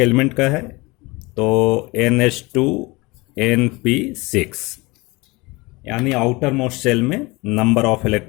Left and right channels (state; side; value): quieter; right; 24.0 dB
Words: एलिमेंट का है तो NH2NP6, यानी आउटर मोस्ट शेल में नंबर ऑफ